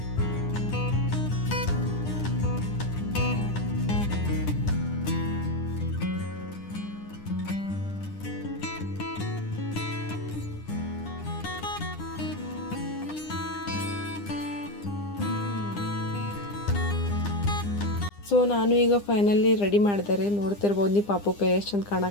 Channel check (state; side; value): late; right; 9.9 ms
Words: ಸೊ ನಾನು ಈಗ ಫೈನಲಿ ರೆಡಿ ಮಾಡಿದೆ ರೀ. ನೋಡ್ತಿರ್ಬೋದು ನೀವು ಪಾಪು ಕೈ ಎಷ್ಟು ಚಂದ